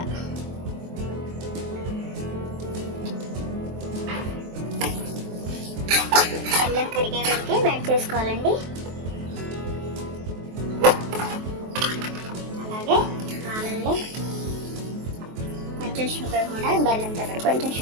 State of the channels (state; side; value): late; left; 23 ms